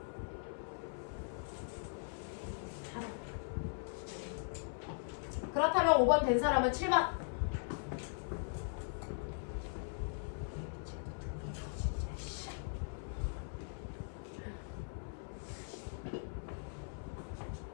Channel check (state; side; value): silent; right; 51 dB below the other